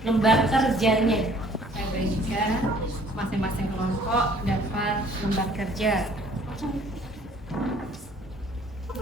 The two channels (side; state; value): both; normal; correlation 0.56